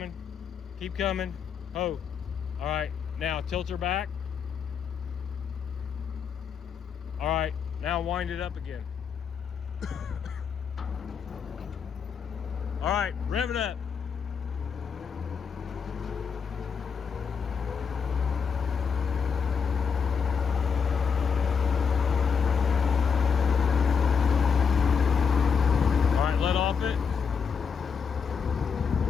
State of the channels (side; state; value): right; quieter; 6.4 dB